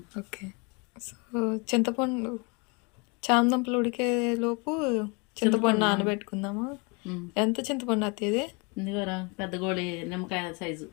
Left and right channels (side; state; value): right; quieter; 30.7 dB